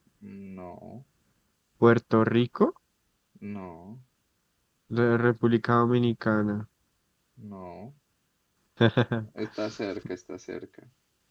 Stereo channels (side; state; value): both; identical; correlation 1.00